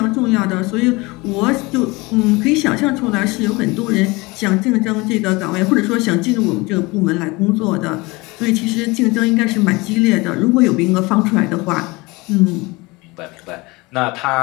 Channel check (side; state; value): right; quieter; 23.9 dB